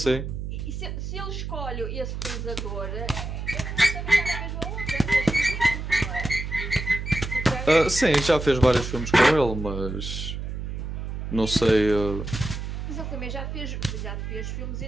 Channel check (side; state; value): right; noise; hum, 5 dB below the sound